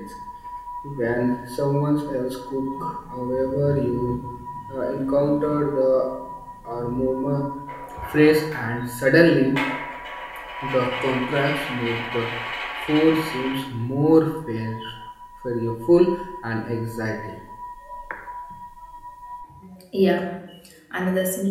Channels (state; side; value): identical; both; correlation 1.00